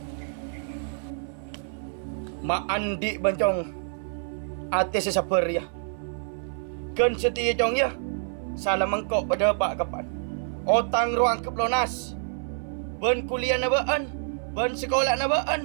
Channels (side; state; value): left; silent; 57 dB below the other